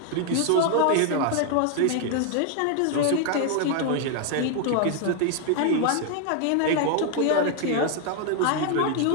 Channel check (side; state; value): both; different; correlation 0.00